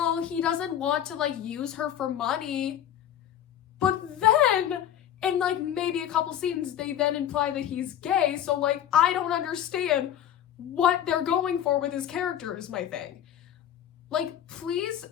he doesn't want to, use her for money. But then, in, maybe a couple scenes, they then imply that he's gay, so, I don't understand what they're going for with his character is my thing. Please,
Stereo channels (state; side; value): quieter; right; 10.5 dB